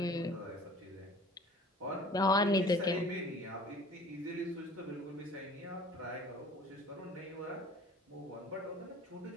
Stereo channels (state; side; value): normal; both; correlation 0.47